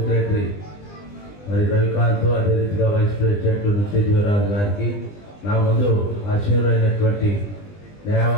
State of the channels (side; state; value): right; late; 20 ms